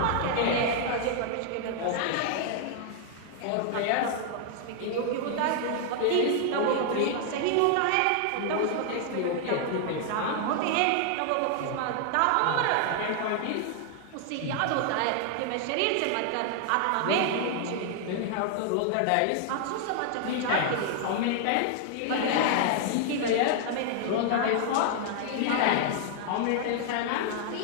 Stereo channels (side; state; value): both; different; correlation 0.00